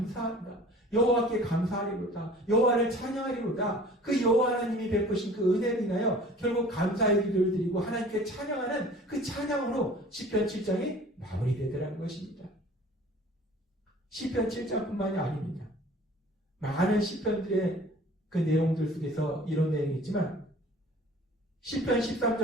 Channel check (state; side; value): normal; both; correlation 0.47